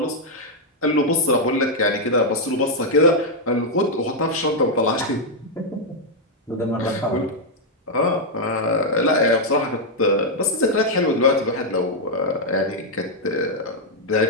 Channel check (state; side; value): normal; both; correlation -0.02